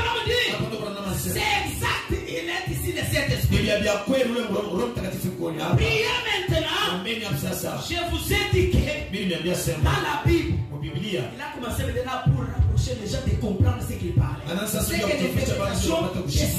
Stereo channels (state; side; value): identical; both; correlation 1.00